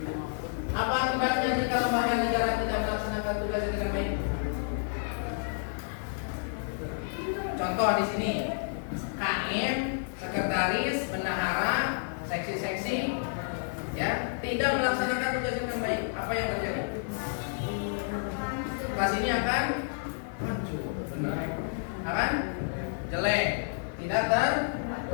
Apa akibatnya jika lembaga negara tidak melaksanakan tugasnya dengan baik? Contoh di sini, KM, sekretaris, bendahara, seksi-seksi, ya, tidak melaksanakan tugasnya dengan baik. Apa yang terjadi? Kelas ini akan hancur, benar. Akan jelek, tidak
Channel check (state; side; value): silent; right; digital silence